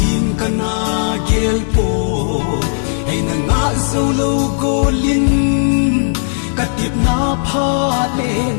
kana gel po ay na nga dâu lâu gồ linh katip na pha lệ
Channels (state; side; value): silent; right; 63 dB below the other